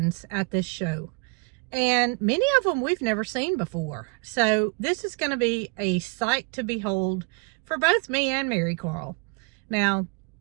at this show, and many of them we've never seen before. So this is going to be a sight to behold for both me and Marycarl. Now,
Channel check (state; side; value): quieter; left; 32.1 dB